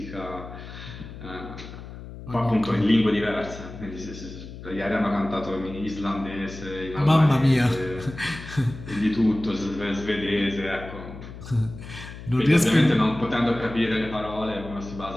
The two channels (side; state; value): left; noise; hum, 13 dB below the sound